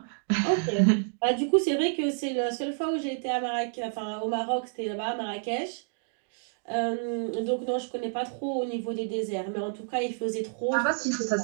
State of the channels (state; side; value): silent; left; digital silence